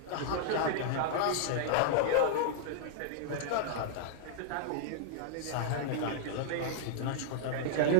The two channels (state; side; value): different; both; correlation -0.01